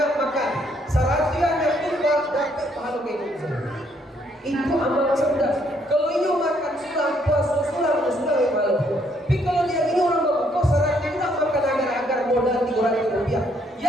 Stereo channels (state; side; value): normal; both; correlation 0.69